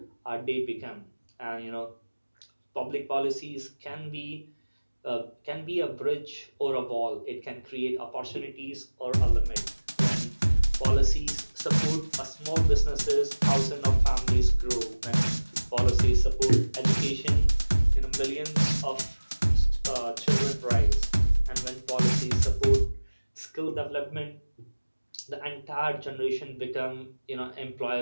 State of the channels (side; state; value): both; inverted; correlation -1.00